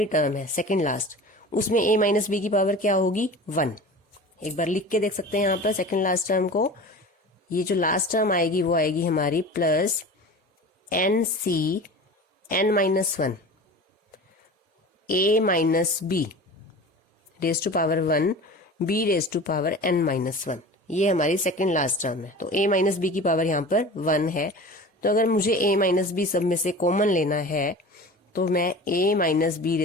टर्म है सेकंड लास्ट, उसमें a माइनस बी की पावर क्या होगी 1। एक बार लिख के देख सकते हैं यहाँ पर सेकंड लास्ट टर्म को। ये जो लास्ट टर्म आएगी वो आएगी हमारी plus n c n minus 1 a minus b raise to power 1 b raise to power n minus 1। ये हमारी सेकंड लास्ट टर्म है, तो a माइनस बी की पावर यहाँ पर 1 है। तो अगर मुझे a माइनस बी सब में से कॉमन लेना है तो मैं a minus b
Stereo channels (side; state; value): both; normal; correlation 0.36